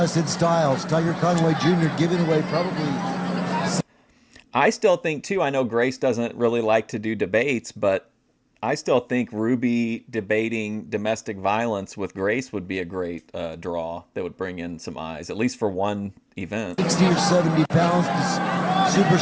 in styles. Tiger Conway Jr. giving away probably... I still think, too, I know Grace doesn't really like to do debates, but I still think Ruby debating domestic violence with Grace would be a great draw that would bring in some eyes, at least for one event. 60 or 70 pounds.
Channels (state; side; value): identical; both; correlation 1.00